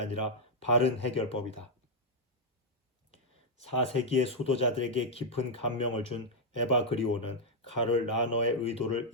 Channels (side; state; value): both; normal; correlation -0.03